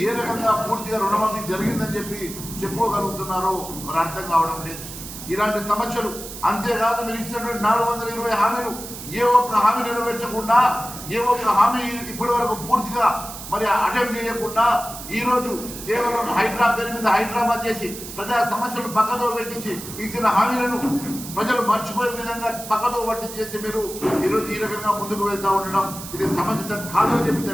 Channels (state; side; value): noise; right; hiss, 11 dB below the sound